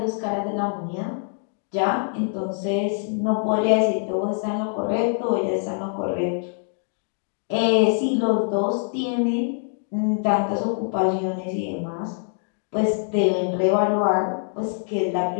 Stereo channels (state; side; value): silent; right; 57 dB below the other